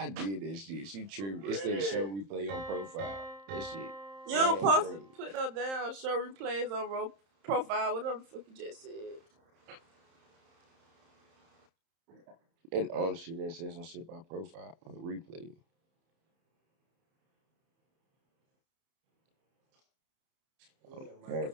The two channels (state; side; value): late; left; 31 ms